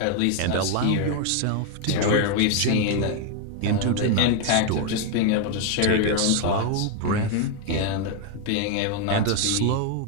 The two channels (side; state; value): both; different; correlation 0.01